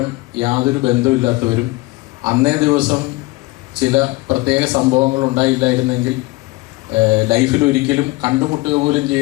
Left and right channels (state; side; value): quieter; right; 21.7 dB